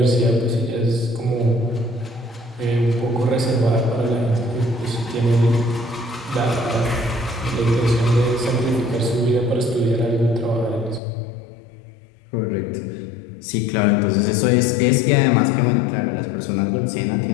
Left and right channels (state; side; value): drops out; right; at 11.0 s